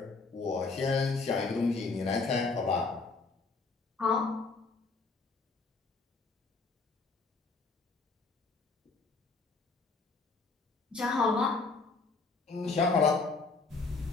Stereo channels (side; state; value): right; quieter; 4.0 dB